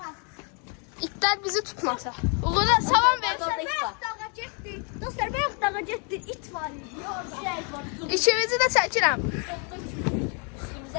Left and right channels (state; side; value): quieter; right; 37.2 dB